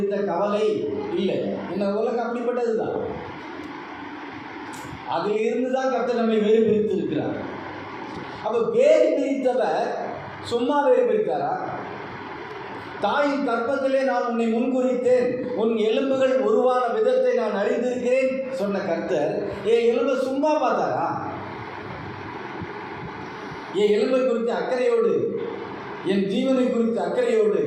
கவலை இல்லை. இந்த உலகம் அப்படிப்பட்டது தான். அதில் இருந்து தான் கர்த்தர் நம்மை வேறு பிரித்து இருக்கிறார். அப்போ வேறு பிரித்தவர் சும்மா வேறு பிரித்தாரா? தாயின் கற்பத்திலே நான் உன்னை முன்குறித்தேன், உன் எலும்புகள் உருவான விதத்தை நான் அறிந்திருக்கிறேன் சொன்ன கர்த்தர் என் எலும்பை சும்மா பார்த்தாரா? என் எலும்பை குறித்த அக்கறையோடு, என் ஜீவனை குறித்த அக்கறையோடு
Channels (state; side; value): identical; both; correlation 1.00